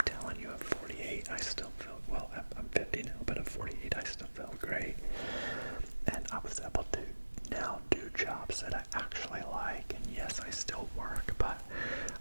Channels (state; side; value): inverted; both; correlation -1.00